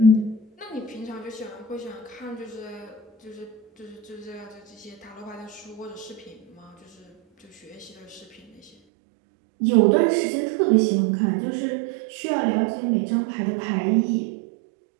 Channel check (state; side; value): drops out; left; at 8.7 s